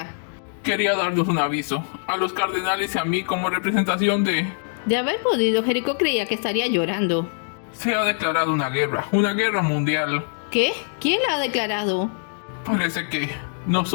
Quería darnos un aviso. A los cardenales y a mí como representación de... De haber podido, Jericho creía que estaría llorando. Se ha declarado una guerra mundial. ¿Qué? ¿Quién la ha declarado? Parece que...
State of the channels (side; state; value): right; silent; digital silence